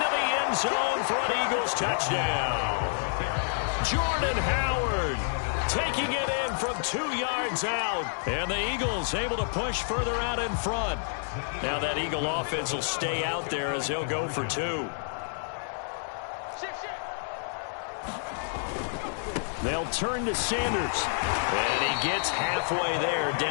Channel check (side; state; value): right; silent; digital silence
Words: the end zone for an Eagles touchdown. Jordan Howard taking it in from 2 yards out. And the Eagles able to push further out in front. Now that Eagle offense will stay out there as they'll go for 2. They'll turn to Sanders. And he gets halfway there